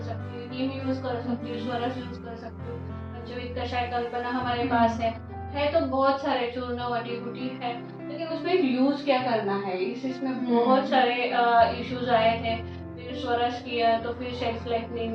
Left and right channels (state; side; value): identical; both; correlation 1.00